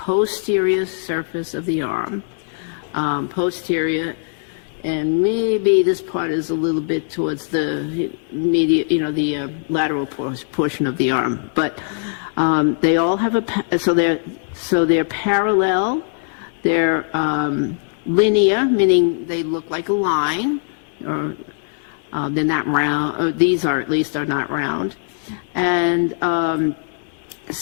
surface of the arm, posterior. And maybe this part is a little bit towards the the lateral portion of the arm. But they all have so they're parallel. They're linear, meaning they look like a line, or they're not round. Or these are at least are not round. And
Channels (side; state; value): right; silent; digital silence